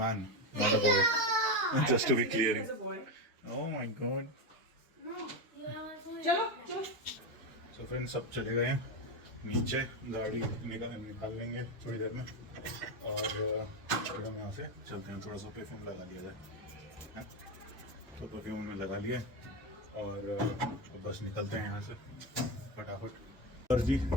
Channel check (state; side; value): normal; both; correlation 0.13